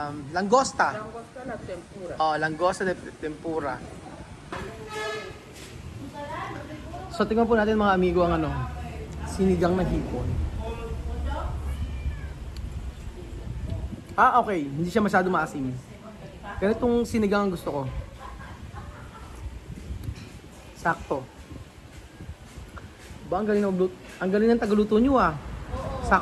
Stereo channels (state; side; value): identical; both; correlation 1.00